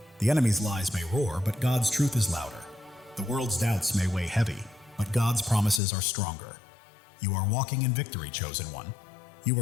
The enemy's lies may roar, but God's truth is louder. The world's doubts may weigh heavy, but God's promises are stronger. You are walking in victory, chosen one. You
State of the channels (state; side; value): drops out; right; at 5.8 s